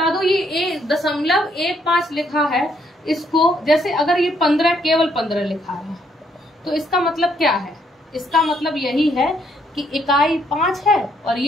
दो, ये 1.15 लिखा है, इसको जैसे अगर ये 15 केवल 15 लिखा है तो इसका मतलब क्या है? इसका मतलब यही है कि इकाई 5 है और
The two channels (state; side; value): normal; both; correlation 0.71